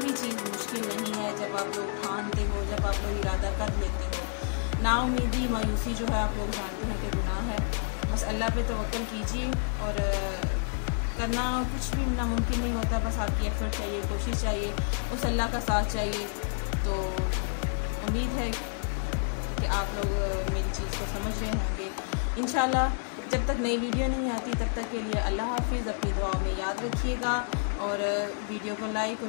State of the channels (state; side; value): silent; right; digital silence